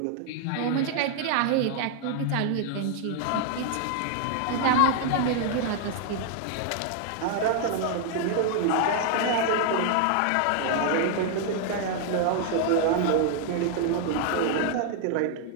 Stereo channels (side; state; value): both; different; correlation 0.00